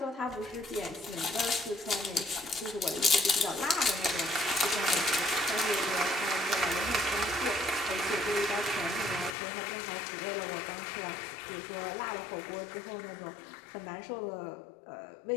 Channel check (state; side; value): drops out; right; at 9.3 s